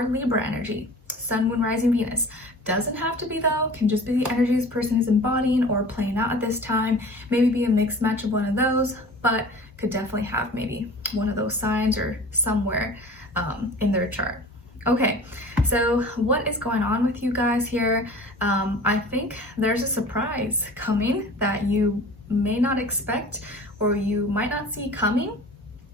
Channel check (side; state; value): both; normal; correlation 0.41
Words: Libra energy. Sun, Moon, Rising, Venus. Doesn't have to be though, can just be the energy this person is embodying or playing out at this time. Maybe be a mixed match of one of those, but could definitely have maybe one of those signs or somewhere in their chart. Okay, so what is going on with you guys here? I think there's a surprise coming that you may not expect or you might not see coming.